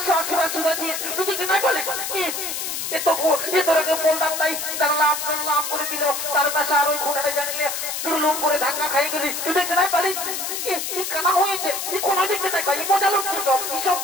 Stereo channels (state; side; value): noise; left; hiss, 4 dB below the sound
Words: বার শুনেছিস তুই কি নাই বলে এ তোরাকে বলতাম নাই লাভ করে দিল তার পাশে আর ওই খুঁটাটা জানিলে লুম করে ধাক্কা খাই গেলি তুই দেখতে নাই পারিস কানা হয়েছে কোনো দেখতে নাই পারি মজা লাগছে সব